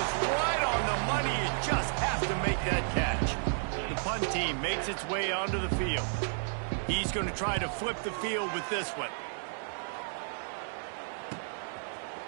right on the money. He just has to make that catch. The punt team makes its way onto the field. He's going to try to flip the field with this one.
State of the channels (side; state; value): left; silent; digital silence